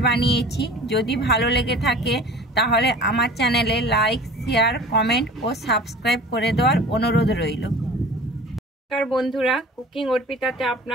বানিয়েছি। যদি ভালো লেগে থাকে তাহলে আমার চ্যানেলে লাইক, শেয়ার, কমেন্ট ও সাবস্ক্রাইব করে দেওয়ার অনুরোধ রইল। নমস্কার বন্ধুরা, কুকিং অর্পিতাতে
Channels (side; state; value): both; normal; correlation 0.42